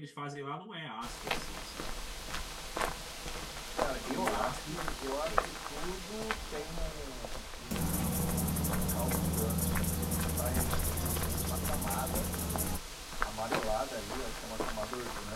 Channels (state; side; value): identical; both; correlation 1.00